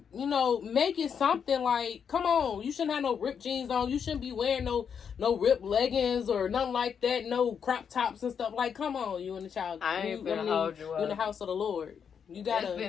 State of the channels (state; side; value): quieter; right; 7.2 dB